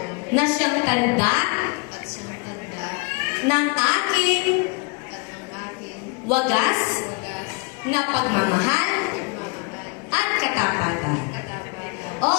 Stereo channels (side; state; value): right; quieter; 31.3 dB